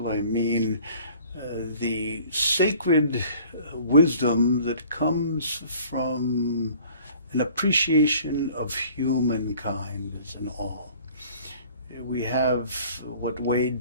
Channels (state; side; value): inverted; both; correlation -0.52